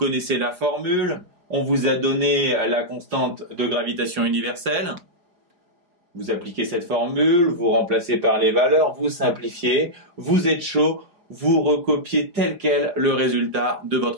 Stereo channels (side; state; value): left; late; 4.9 ms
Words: la formule. On vous a donné la constante de gravitation universelle. Vous appliquez cette formule, vous remplacez par les valeurs, vous simplifiez, vous êtes chaud, vous recopiez tel quel le résultat de